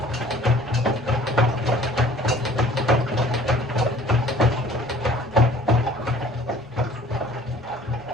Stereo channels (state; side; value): normal; both; correlation 0.51